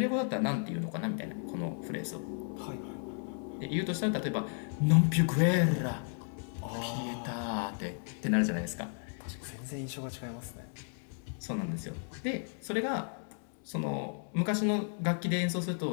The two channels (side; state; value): right; silent; 55 dB below the other